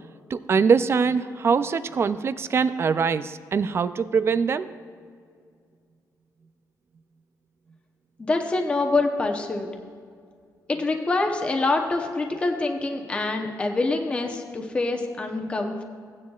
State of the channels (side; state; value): both; normal; correlation 0.77